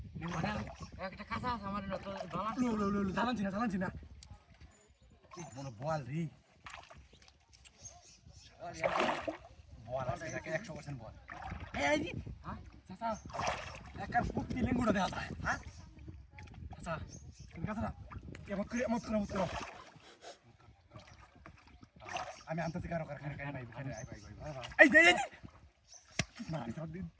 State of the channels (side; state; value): both; identical; correlation 1.00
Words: একটা কাঁচা আছে আমার তো বাবা লো জানাচ্ছি না মনে বল রে বল আজকে 100% বল এই হ্যাঁ চাচা একার ফুটি লিঙ্গুড়া দেয়া যায় হ্যাঁ চাচা তুমি কাছরা এমন করো আমি আনতেছি কারো কারখানা ভাই এই না